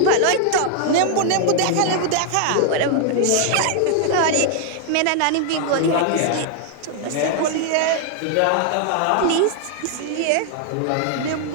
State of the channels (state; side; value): different; both; correlation 0.00